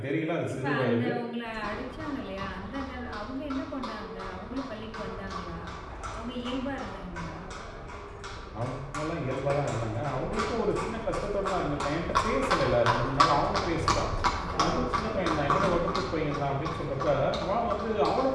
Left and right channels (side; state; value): both; identical; correlation 1.00